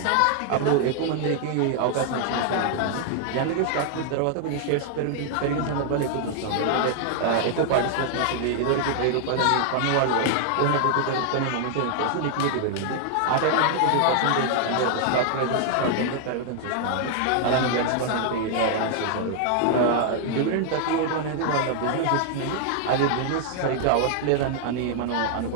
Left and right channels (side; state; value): both; different; correlation 0.00